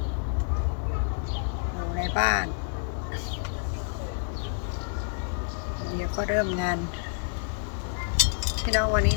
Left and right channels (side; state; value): right; silent; digital silence